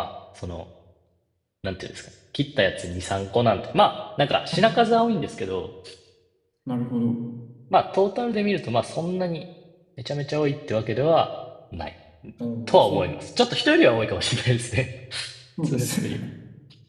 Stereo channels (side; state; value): both; identical; correlation 1.00